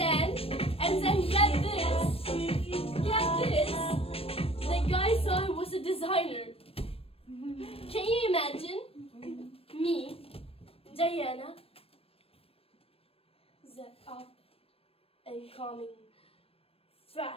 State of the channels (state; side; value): late; right; 0.28 ms